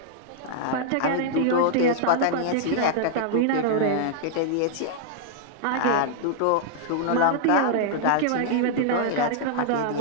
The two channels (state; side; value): different; both; correlation -0.01